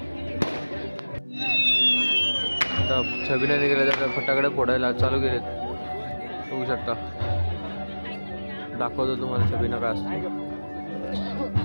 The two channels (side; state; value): both; inverted; correlation -1.00